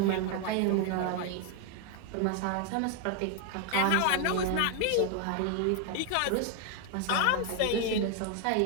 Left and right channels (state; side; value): different; both; correlation 0.01